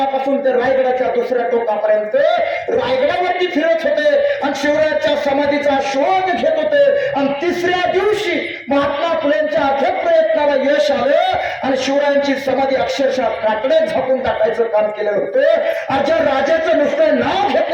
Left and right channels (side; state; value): both; identical; correlation 1.00